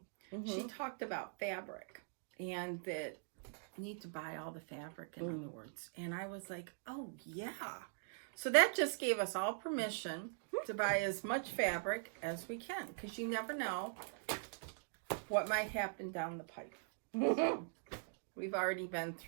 she talked about fabric and that. Need to buy all the fabric, in other words. And I was like, oh yeah. So that just gave us all permission to buy as much fabric as we can, because you never know what might happen down the pipe. So we've already been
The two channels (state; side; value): silent; left; digital silence